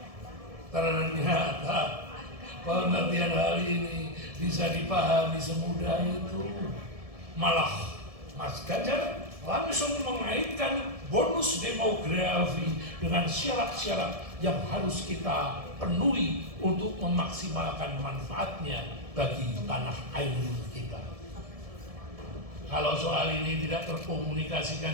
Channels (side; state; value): left; late; 1.7 ms